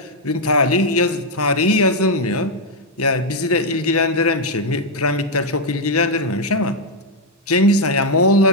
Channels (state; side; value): normal; both; correlation 0.00